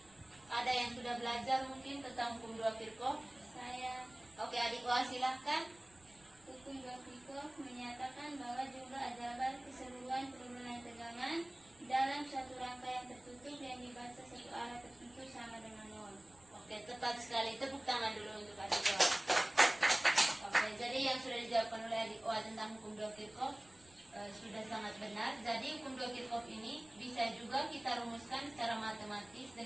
Ada yang sudah belajar mungkin tentang hukum 2 Kirchhoff? Saya. Oke, adik Wah silahkan. Hukum 2 Kirchhoff menyatakan bahwa jumlah arjabat keseluruhan penurunan tegangan dalam satu rangkaian tertutup yang dibaca satu arah tertentu sama dengan 0. Oke, tepat sekali. Tepuk tangan dulu untuk adik Wah. Oke, jadi yang sudah dijawabkan oleh adik Wah tentang hukum 2 Kirchhoff sudah sangat benar. Jadi hukum 2 Kirchhoff ini bisa juga kita rumuskan secara matematis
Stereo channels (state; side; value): noise; right; rumble, 27 dB below the sound